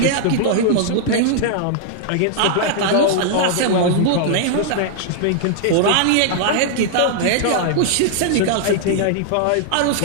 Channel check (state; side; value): different; both; correlation -0.01